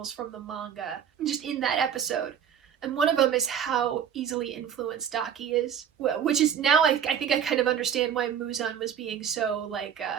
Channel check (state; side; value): quieter; left; 8.6 dB